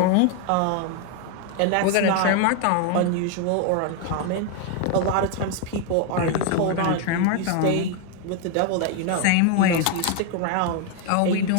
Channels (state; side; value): different; both; correlation 0.01